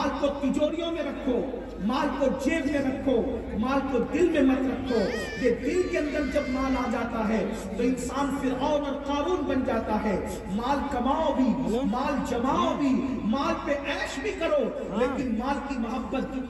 کو تجوریوں میں رکھو، مال کو جیب میں رکھو، مال کو دل میں مت رکھو۔ یہ دل کے اندر جب مال آ جاتا ہے تو انسان فرعون اور قارون قارون بن جاتا ہے. مال کماؤ بھی, مال جماؤ بھی, مال پہ عیش بھی کرو, لیکن مال کی محبت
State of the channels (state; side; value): identical; both; correlation 1.00